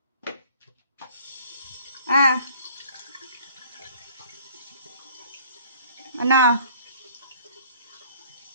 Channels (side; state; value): both; inverted; correlation -0.53